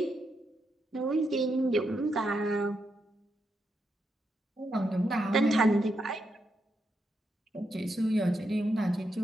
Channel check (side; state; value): both; normal; correlation 0.82